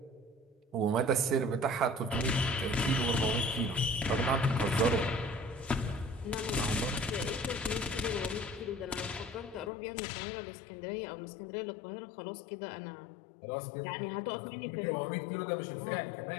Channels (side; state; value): right; drops out; at 9.7 s